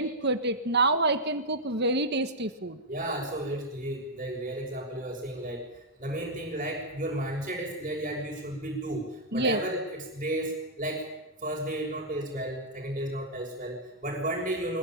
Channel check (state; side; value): normal; both; correlation -0.05